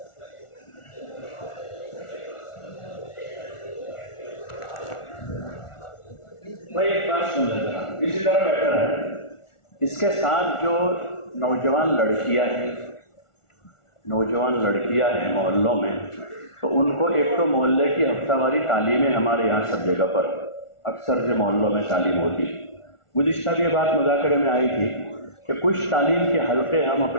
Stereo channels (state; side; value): late; right; 1.4 ms